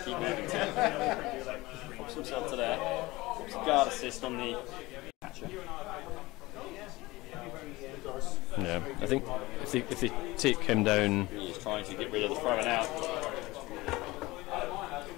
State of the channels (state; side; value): quieter; right; 20.4 dB